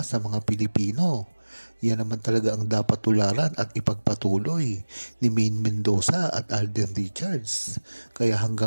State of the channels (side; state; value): both; inverted; correlation -1.00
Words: sa mga Pilipino. Yan naman talaga ang dapat tularan at ipagpatuloy ni Maine Mendoza at Alden Richards. Kaya